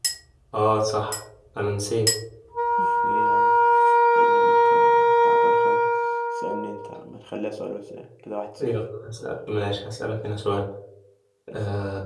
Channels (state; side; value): identical; both; correlation 1.00